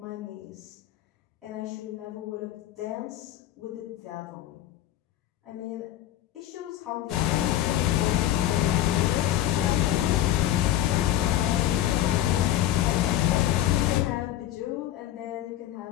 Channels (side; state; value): right; quieter; 12.8 dB